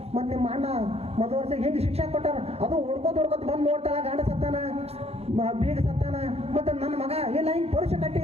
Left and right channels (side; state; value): left; late; 0.29 ms